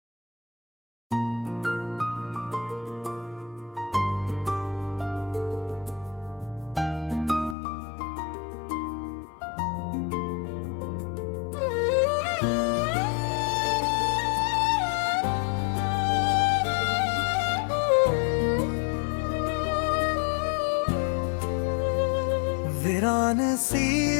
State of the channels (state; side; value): drops out; right; at 7.6 s